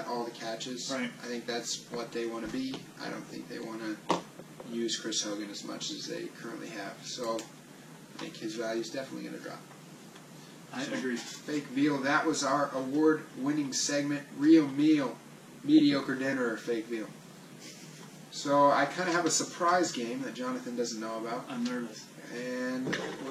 all the catches. Right. I think that's what they want to be. I don't think they want to use Chris Hogan as much as they currently have. So I think his value is definitely going to drop. I agree. Fake veal. That was our award-winning segment, Real Meal, Mediocre Dinner, or Fake Veal. So I kind of have a surprise game that Jonathan doesn't know about. I'm nervous. And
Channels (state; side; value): identical; both; correlation 1.00